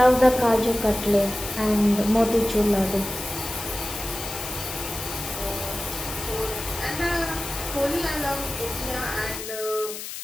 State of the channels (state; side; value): noise; left; hiss, 8 dB below the sound